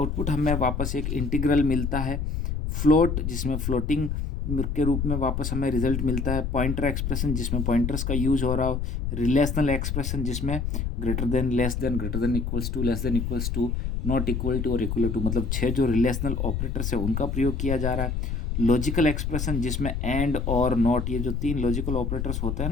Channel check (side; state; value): left; noise; rumble, 2 dB below the sound